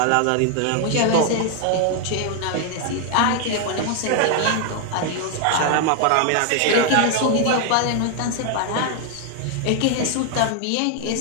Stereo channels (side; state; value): both; different; correlation 0.00